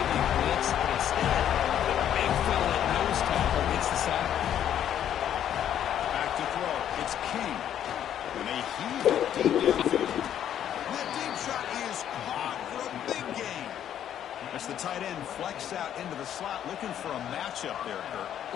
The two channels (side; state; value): right; quieter; 10.2 dB